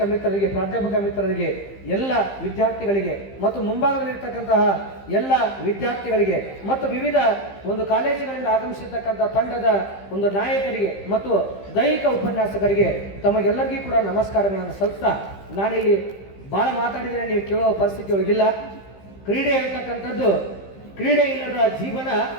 ಮಿತ್ರರಿಗೆ, ಪ್ರಾಧ್ಯಾಪಕ ಮಿತ್ರರಿಗೆ, ಎಲ್ಲ ವಿದ್ಯಾರ್ಥಿಗಳಿಗೆ ಮತ್ತು ಮುಂಭಾಗದಲ್ಲಿರ್ತಕ್ಕಂತಹ ಎಲ್ಲ ವಿದ್ಯಾರ್ಥಿಗಳಿಗೆ ಮತ್ತು ವಿವಿಧ ಒಂದು ಕಾಲೇಜಿನಿಂದ ಆಗಮಿಸಿರ್ತಕ್ಕಂಥ ತಂಡದ ಒಂದು ನಾಯಕರಿಗೆ ಮತ್ತು ದೈಹಿಕ ಉಪನ್ಯಾಸಕರಿಗೆ ತಮಗೆಲ್ಲರಿಗೂ ಕೂಡ ನಮಸ್ಕಾರಗಳನ್ನು ಸಲ್ಲಿಸ್ತಾ, ನಾನಿಲ್ಲಿ ಭಾಳ ಮಾತಾಡಿದರೆ ನೀವು ಕೇಳೋ ಪರಿಸ್ಥಿತಿ ಒಳಗಿಲ್ಲ. ಕ್ರೀಡೆ ಇರತಕ್ಕಂಥದ್ದು, ಕ್ರೀಡೆ ಇಲ್ಲದ ಜೀವನ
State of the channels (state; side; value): late; right; 15 ms